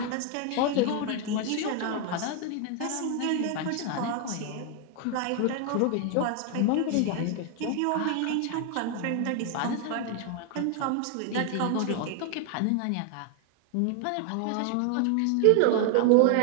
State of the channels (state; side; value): different; both; correlation 0.00